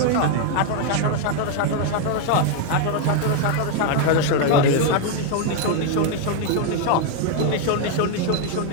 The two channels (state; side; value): different; both; correlation 0.01